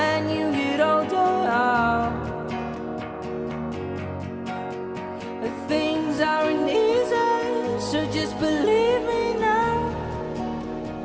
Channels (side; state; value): both; identical; correlation 1.00